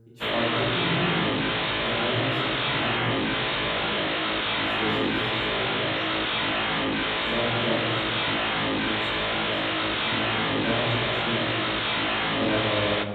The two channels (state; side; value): identical; both; correlation 1.00